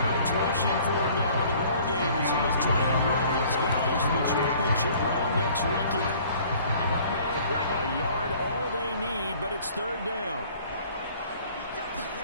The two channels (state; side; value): inverted; both; correlation -0.53